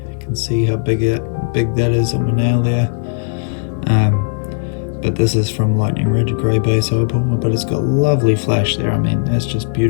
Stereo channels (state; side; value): silent; right; 68 dB below the other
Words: can see how big that is on my nail there. But this is from Lightning Ridge, grey base opal, but it's got lovely flash there. I mean, that's just